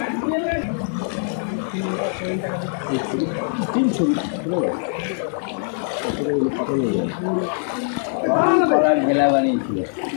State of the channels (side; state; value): right; silent; digital silence